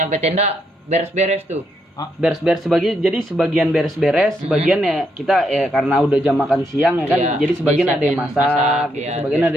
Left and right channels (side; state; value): both; normal; correlation 0.77